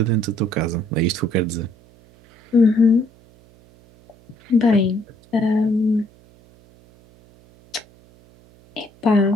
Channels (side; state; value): right; noise; hum, 28 dB below the sound